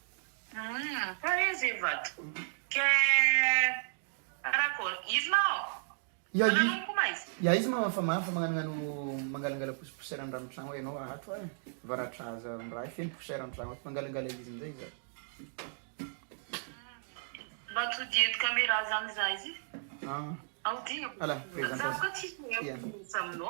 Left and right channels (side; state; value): left; silent; digital silence